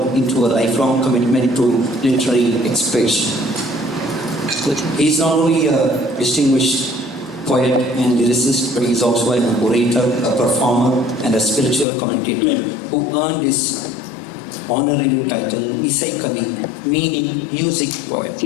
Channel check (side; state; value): right; drops out; at 11.9 s